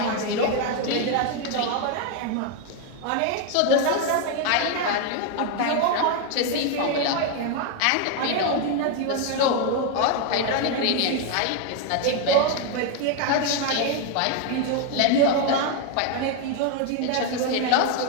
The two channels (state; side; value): different; both; correlation 0.01